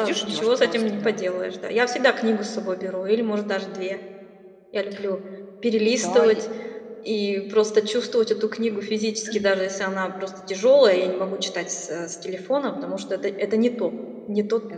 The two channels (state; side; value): identical; both; correlation 1.00